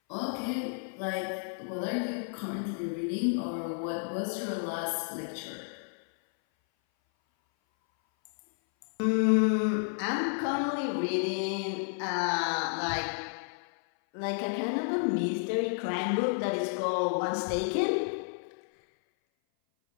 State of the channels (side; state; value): right; silent; 57 dB below the other